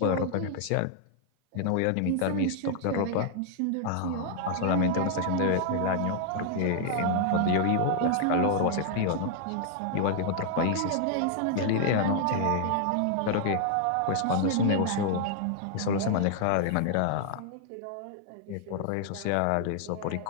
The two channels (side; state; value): both; different; correlation 0.00